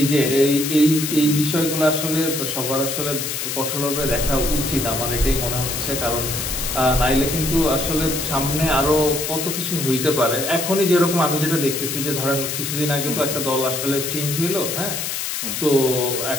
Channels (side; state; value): left; noise; hiss, 3 dB below the sound